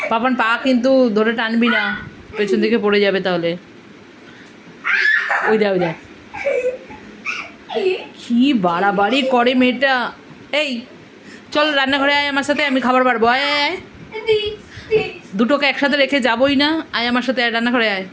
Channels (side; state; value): both; identical; correlation 1.00